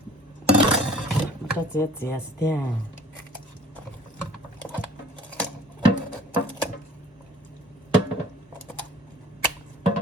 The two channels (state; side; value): normal; both; correlation 0.50